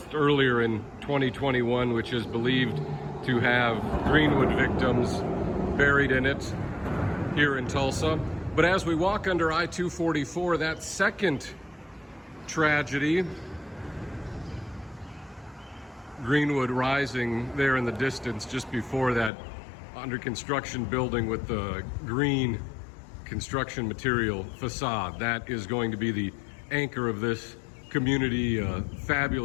earlier in 2021, which is believed to have Greenwood victims buried in it here in Tulsa. But as we walk under I-244, that second tragedy, Greenwood Rising there in the distance, just before that under construction building with the green construction material facade, that is going to be the anchor of this community, a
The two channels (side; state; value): right; drops out; at 19.3 s